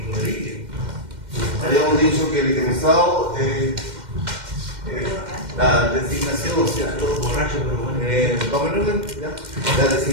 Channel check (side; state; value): left; late; 2.1 ms